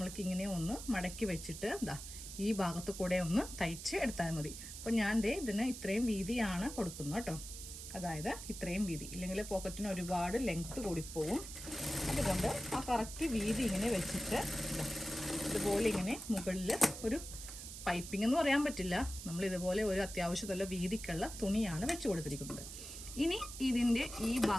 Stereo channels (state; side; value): noise; right; hiss, 10 dB below the sound